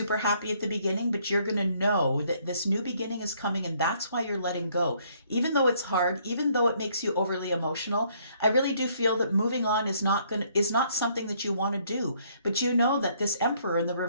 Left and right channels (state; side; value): inverted; both; correlation -0.66